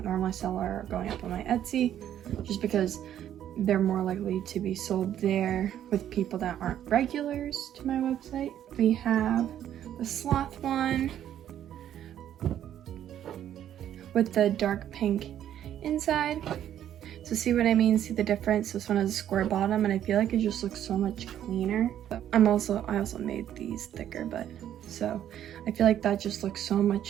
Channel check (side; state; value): left; quieter; 10.7 dB